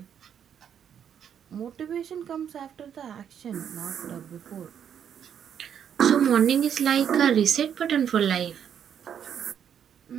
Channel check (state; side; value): quieter; left; 8.6 dB